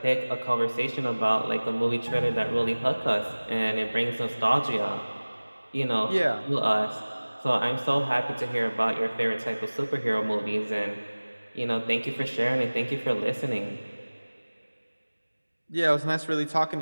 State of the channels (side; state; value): both; inverted; correlation -1.00